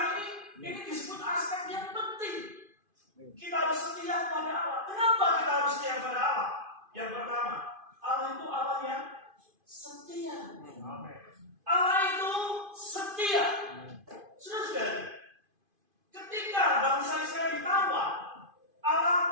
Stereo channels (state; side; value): late; left; 2.5 ms